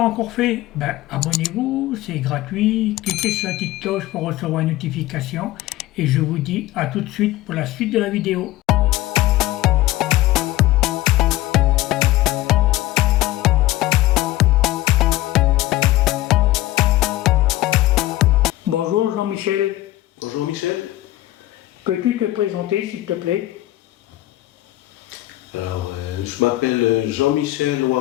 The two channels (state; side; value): quieter; right; 16.4 dB